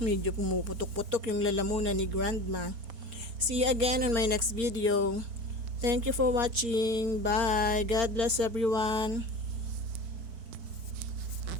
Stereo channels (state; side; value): late; left; 4.7 ms